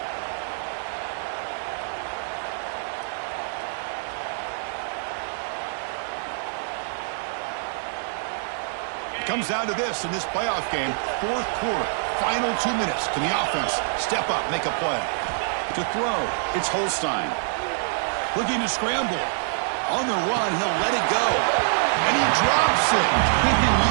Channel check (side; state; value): left; silent; digital silence